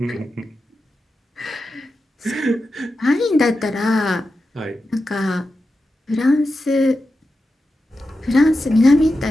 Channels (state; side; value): normal; both; correlation 0.90